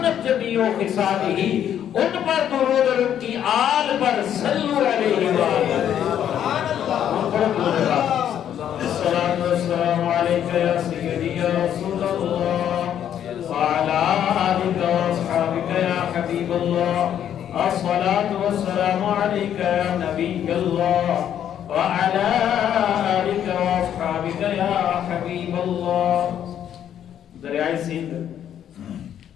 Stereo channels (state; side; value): quieter; right; 9.9 dB